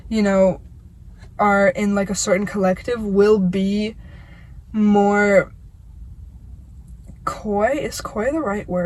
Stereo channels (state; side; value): identical; both; correlation 1.00